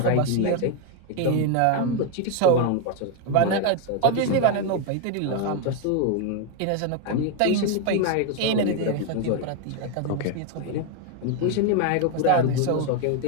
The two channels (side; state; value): both; different; correlation 0.01